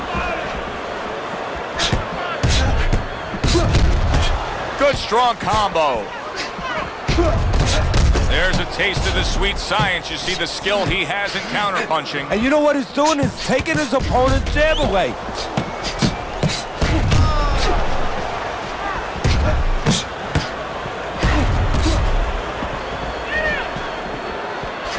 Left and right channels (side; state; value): both; identical; correlation 1.00